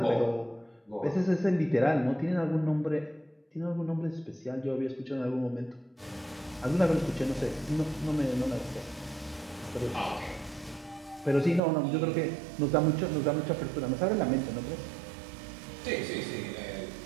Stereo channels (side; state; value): left; drops out; at 11.6 s